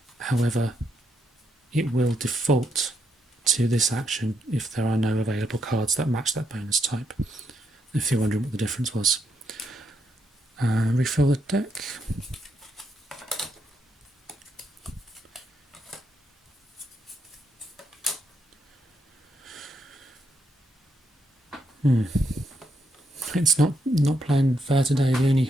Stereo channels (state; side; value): normal; both; correlation 0.78